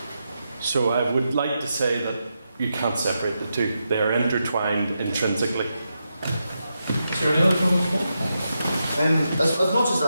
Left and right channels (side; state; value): both; inverted; correlation -0.86